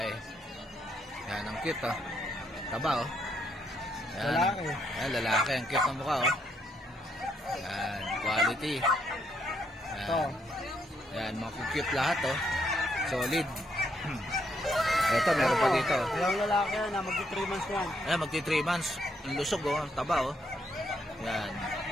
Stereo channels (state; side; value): normal; both; correlation 0.74